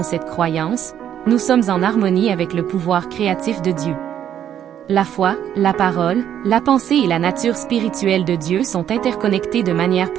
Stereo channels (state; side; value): quieter; left; 10.1 dB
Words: cette croyance, nous sommes en harmonie avec le pouvoir créatif de Dieu. La foi, la parole, la pensée et la nature spirituelle de Dieu sont interconnectées de manière